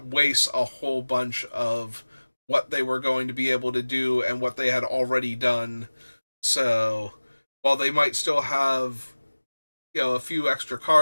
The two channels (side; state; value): both; inverted; correlation -1.00